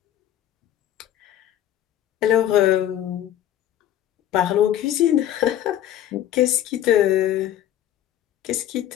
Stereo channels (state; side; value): quieter; right; 11.7 dB